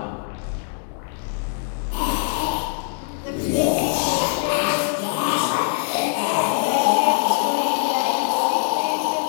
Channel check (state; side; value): silent; right; digital silence